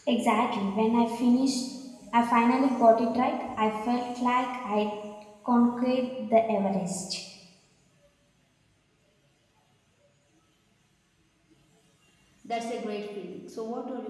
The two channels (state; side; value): identical; both; correlation 1.00